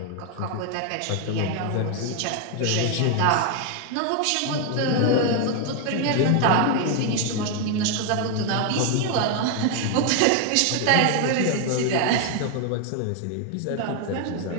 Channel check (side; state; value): both; different; correlation 0.01